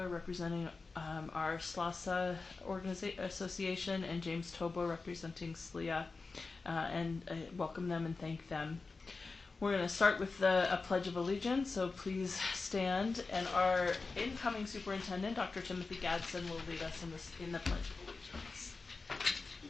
representing our SLASA Association, and James Tobo representing SLIA, and welcome them and thank them. We're going to start with a Pledge of Allegiance, so please stand, and our incoming superintendent, Dr. Timothy Gadsden, will lead us in the Pledge of Allegiance.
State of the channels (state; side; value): quieter; right; 4.1 dB